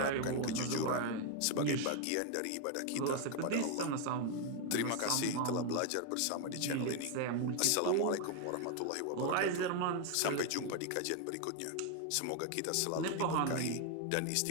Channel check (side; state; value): both; different; correlation 0.01